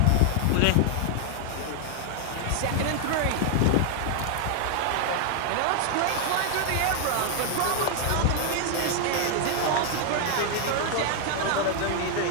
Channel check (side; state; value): both; different; correlation 0.00